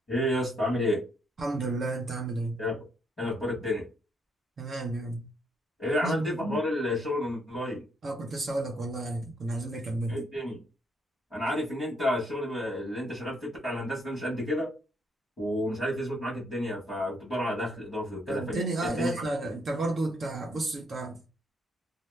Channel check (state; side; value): normal; both; correlation 0.72